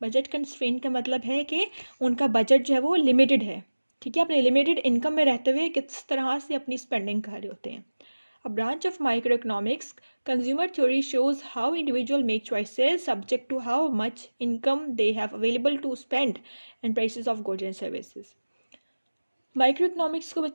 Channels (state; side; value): inverted; both; correlation -1.00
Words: बजट कंस्ट्रेंट का मतलब है कि उनका बजट जो है वो लिमिटेड है। ठीक है, अपने लिमिटेड इनकम में रहते हुए किस तरह से अपनी स्पेंडिंग कर रहे होते हैं। A branch of microeconomics, consumer theory shows how individuals make choices subject to how much income they have available to spend and prices of goods and services. Micro economics को